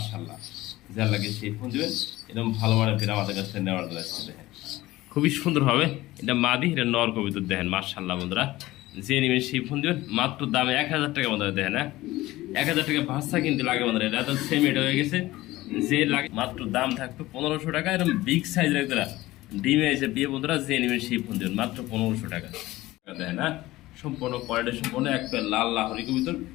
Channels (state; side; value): quieter; right; 17.7 dB